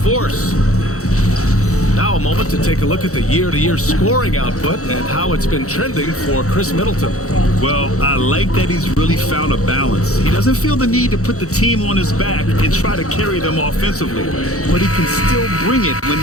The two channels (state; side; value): late; right; 0.65 ms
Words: Now a moment to take a look at the year-to-year scoring output and how it's been trending for Chris Middleton. Well, I like that he's really found a balance. He doesn't feel the need to put the team on his back and try to carry them offensively, but he can still bring it when